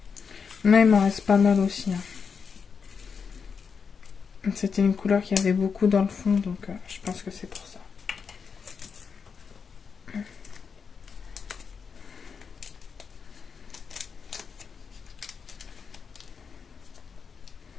Mais il m'en reste pas mal aussi. C'était une couleur qui avait beaucoup dans le fond, donc je pense que c'est pour ça.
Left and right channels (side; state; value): right; quieter; 5.9 dB